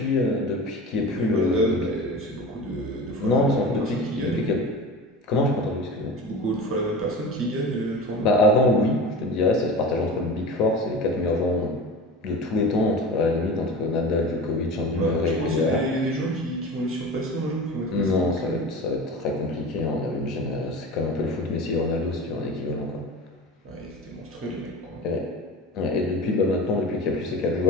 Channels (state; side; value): normal; both; correlation 0.32